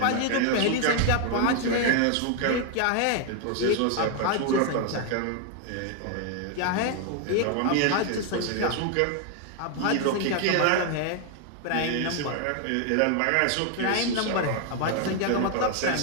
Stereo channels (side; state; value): both; different; correlation 0.01